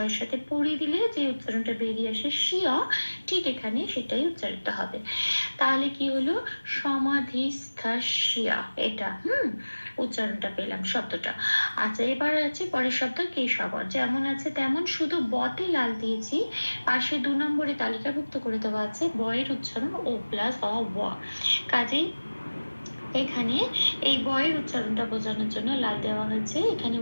সাথে পড়ি দিলে যে উচ্চারণটা বেরিয়ে আসে শিয়া, ঠিক এখানে সেটাই উচ্চারিত হবে। তাহলে কি হলো, সমাধিস্থিয়া, এটা উচ্চারণটা পেলাম শব্দটা। আচ্ছা, এবার আছে পরের শব্দ কেশব, যেমন আছে তেমন, শুধু বতে লাল দিয়েছি, পাশে 2 নম্বরে তালিকাভুক্ত করে দেওয়া আছে বয়ের উচ্চারণ ও প্লাস অ ব, কাজেই এখানে এই বয়ের উচ্চারণটা বোঝানোর জন্য লাল দেওয়া হয়েছে। এখানে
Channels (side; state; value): both; inverted; correlation -1.00